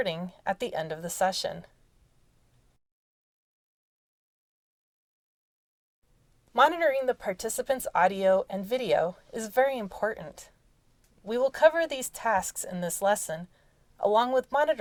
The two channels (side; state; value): both; identical; correlation 1.00